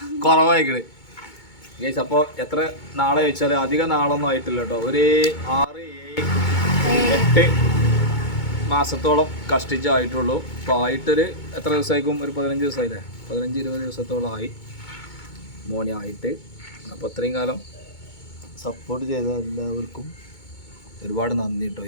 കുറവായിക്കണ് ഗൈസ്. അപ്പോൾ എത്ര നാളെ ചോദിച്ചാൽ അധികം നാളൊന്നും ആയിട്ടില്ല കേട്ടോ. ഒരു 6-8 മാസത്തോളം കഷ്ടിച്ചായിട്ടുള്ളൂ. അപ്പോൾ ആയിട്ടൊരു എത്ര ദിവസമായിരിക്കും? ഒരു 15 ദിവസമായില്ലേ? 15-20 ദിവസത്തോളം ആയി മോനെ ആയിട്ട്. അപ്പോൾ അത്രയും കാലം സപ്പോർട്ട് ചെയ്ത എല്ലാവർക്കും ഒരുപാട് നന്ദി കേട്ടോ.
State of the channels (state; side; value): late; right; 2.2 ms